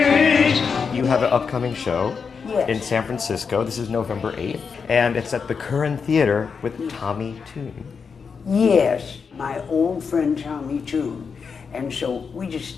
You have an upcoming show Yes. in San Francisco. This is November 8th, and it's at the Curran Theater with Tommy Tune. Yes, my old friend Tommy Tune. And so we just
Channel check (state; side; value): quieter; right; 5.8 dB